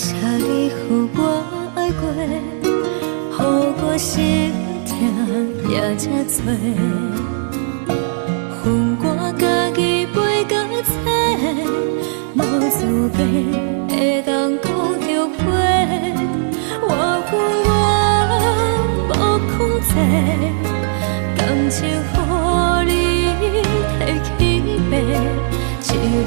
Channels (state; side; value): silent; left; digital silence